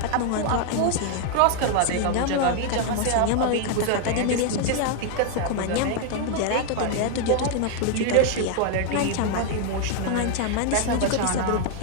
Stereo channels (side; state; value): both; different; correlation 0.00